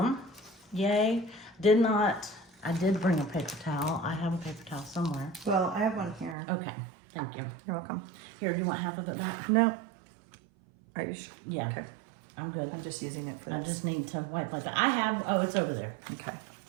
Yay. I did bring a paper towel. I have a paper towel somewhere. Well, I have one here. Okay, thank you. You're welcome. Here, do you want half of it back? No. Are you sure? Yeah, Okay. I'm good. I'm just using it for I this. just need to wipe like that. I have, oh, it's over there. Okay.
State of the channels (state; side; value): drops out; left; at 6.4 s